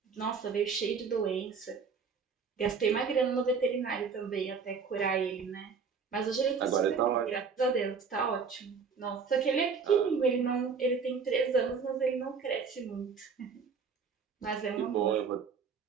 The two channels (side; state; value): left; quieter; 5.6 dB